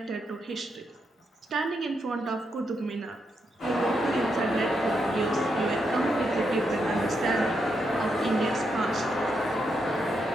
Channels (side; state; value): both; normal; correlation 0.81